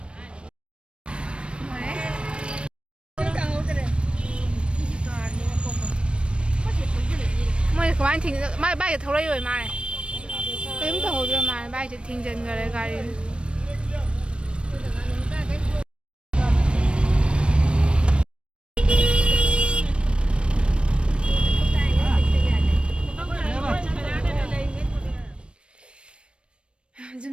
ꯃꯣꯏꯅ ꯀꯃꯥꯏꯅ ꯃꯥꯏ ꯕꯥꯏꯛꯇ ꯊꯧꯔꯛꯏ ꯃꯥꯜꯂꯦ ꯀꯔꯤꯝ ꯇꯧꯍꯧꯗ꯭ꯔ ꯃꯥꯜꯂꯦ ꯕꯥꯏꯛꯁꯦ ꯊꯤꯡꯖꯤꯟꯈꯔꯦ ꯒꯥꯔꯤ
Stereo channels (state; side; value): late; left; 0.057 ms